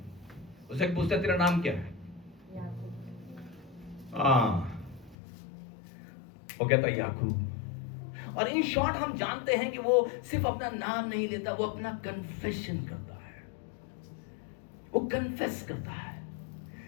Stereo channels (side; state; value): right; drops out; at 5.2 s